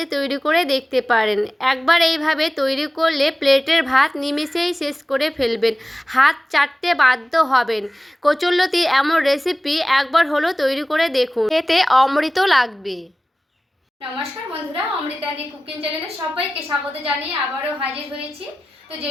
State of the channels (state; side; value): normal; both; correlation 0.96